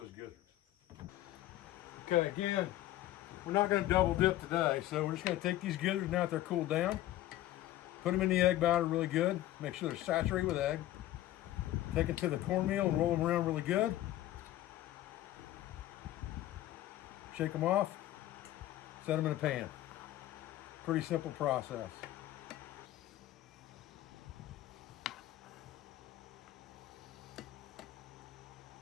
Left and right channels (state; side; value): quieter; right; 14.3 dB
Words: gizzards. Okay, again, we're not going to double dip today, so we're just going to take these gizzards now that they're cooled down, put them in the egg batter really good, make sure they're saturated with egg, take it to the cornmeal and roll them around really good, shake them off, set them in a pan. Pretty simple process.